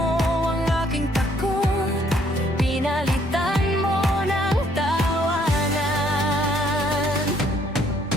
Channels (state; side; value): normal; both; correlation 0.66